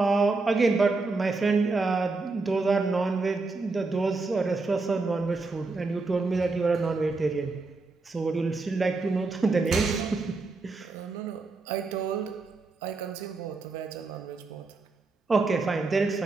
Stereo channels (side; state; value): left; quieter; 3.7 dB